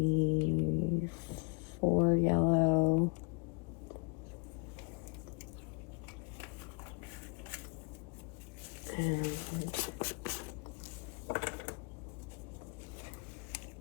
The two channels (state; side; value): quieter; right; 32.5 dB